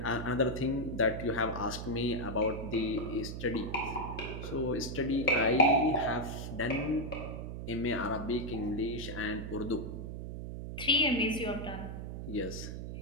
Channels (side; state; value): right; noise; hum, 7 dB below the sound